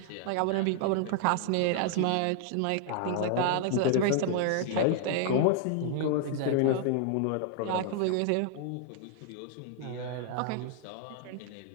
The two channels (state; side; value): different; both; correlation 0.00